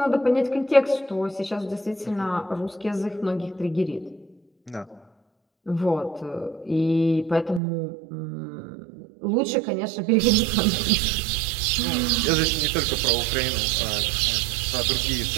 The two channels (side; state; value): left; drops out; at 7.6 s